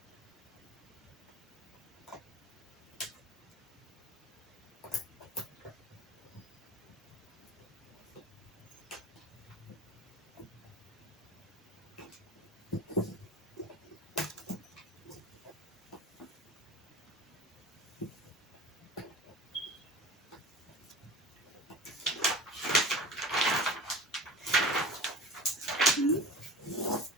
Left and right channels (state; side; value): normal; both; correlation 0.36